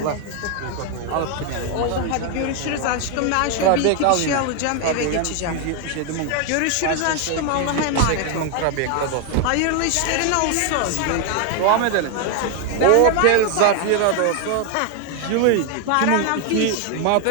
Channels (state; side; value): different; both; correlation 0.01